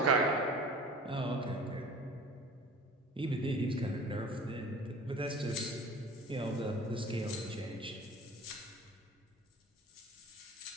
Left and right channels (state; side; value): normal; both; correlation 0.42